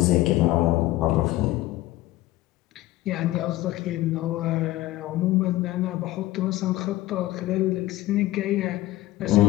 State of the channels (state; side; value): quieter; right; 16.6 dB